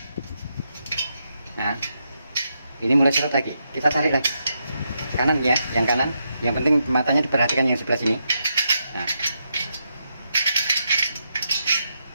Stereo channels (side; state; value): both; inverted; correlation -0.82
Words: Nah ini mulai seret lagi, kita tarik lagi kanan ya, yang kanan. Yang penting matanya diperhatikan yang sebelah sini. Nah